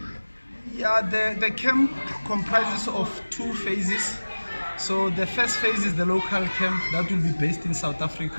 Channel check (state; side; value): inverted; both; correlation -1.00